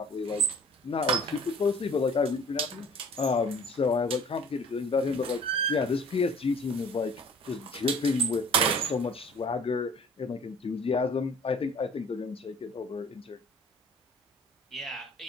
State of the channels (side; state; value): both; normal; correlation 0.48